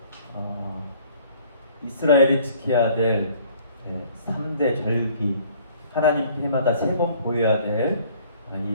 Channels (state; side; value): inverted; both; correlation -0.56